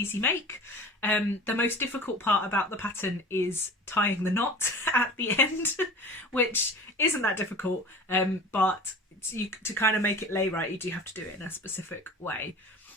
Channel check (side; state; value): both; normal; correlation 0.39